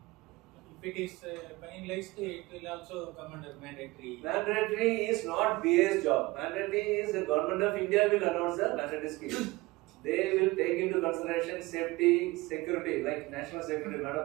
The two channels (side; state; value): left; quieter; 21.5 dB